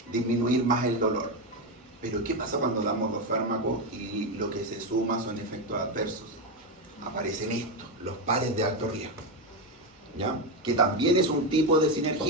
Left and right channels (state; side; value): normal; both; correlation 0.10